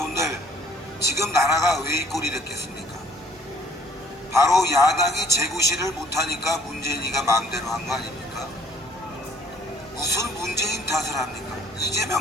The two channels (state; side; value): normal; both; correlation 0.59